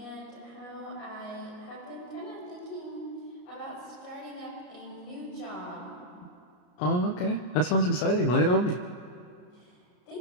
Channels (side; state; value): right; late; 34 ms